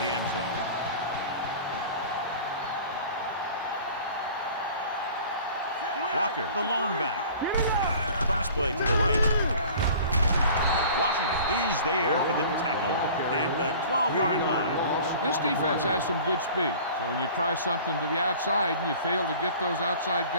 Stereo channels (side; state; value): both; inverted; correlation -0.45